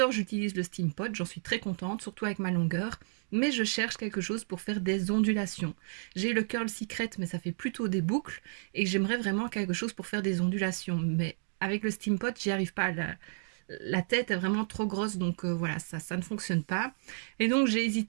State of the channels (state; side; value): silent; left; digital silence